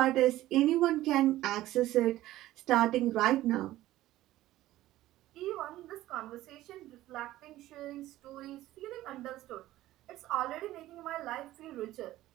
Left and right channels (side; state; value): left; quieter; 15.4 dB